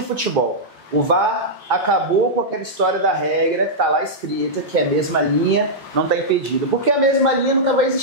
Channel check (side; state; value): both; normal; correlation -0.09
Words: futebol. O VAR acabou com aquela história da regra que está lá escrita, que é a mesma linha, não está impedido. Porque a mesma linha nunca vai